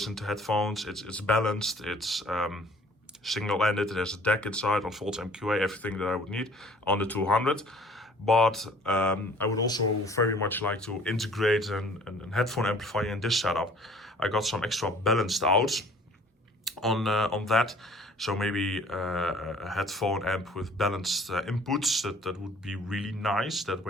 to headphones. It's balanced, it's single-ended, it has a deck inside, unfolds MQA, everything that I would need on the 200. But I would also very much like to integrate an headphone amplifier in this setup. I got some extra balanced outs on that. So maybe a headphone amp with balanced inputs, that would be really nice. That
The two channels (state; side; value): normal; both; correlation 0.53